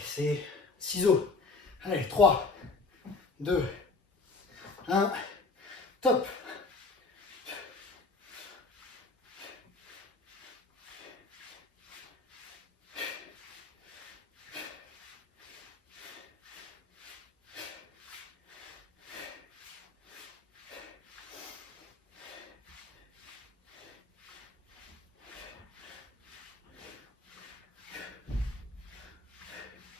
c'est ciseaux. Allez, 3, 2, 1. Top.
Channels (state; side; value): quieter; right; 3.8 dB